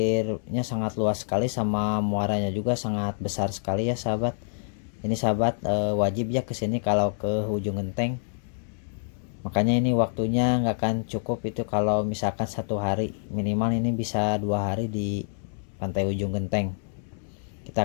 sangat luas sekali, sama muaranya juga sangat besar sekali ya sahabat. Ini sahabat wajib ya kesini kalau ke ujung genteng. Makanya ini waktunya nggak akan cukup itu kalau misalkan 1 hari, minimal ini bisa 2 hari di pantai ujung genteng.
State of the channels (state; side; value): silent; right; 60 dB below the other